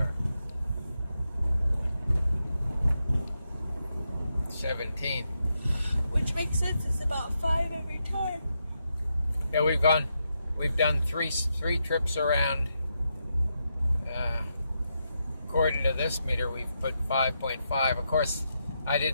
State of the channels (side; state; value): both; inverted; correlation -0.84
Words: 17. Which makes sense. It's about 5 every time. Yeah, we've done three trips around. According to this meter, we've put 5.5. Of course, I